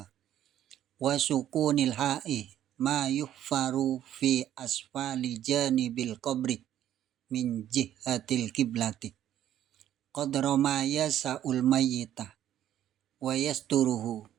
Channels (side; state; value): left; quieter; 11.5 dB